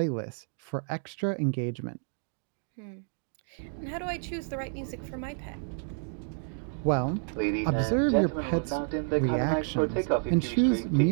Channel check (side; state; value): left; silent; 58 dB below the other